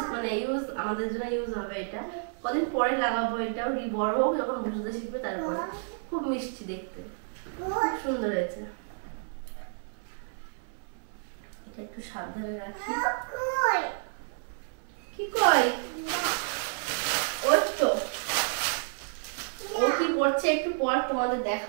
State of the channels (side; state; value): left; silent; 58 dB below the other